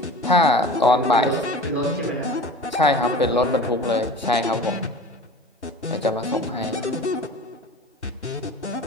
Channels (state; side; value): normal; both; correlation 0.38